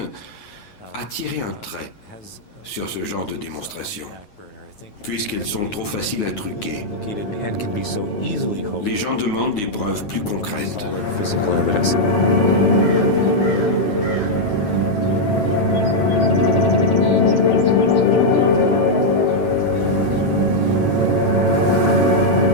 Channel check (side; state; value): right; late; 9.4 ms